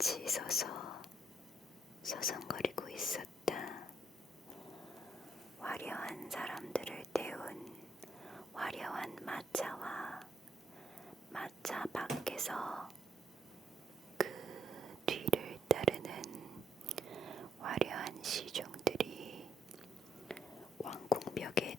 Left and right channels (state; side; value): normal; both; correlation 0.74